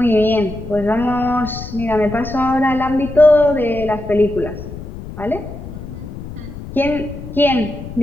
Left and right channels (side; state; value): left; noise; rumble, 11 dB below the sound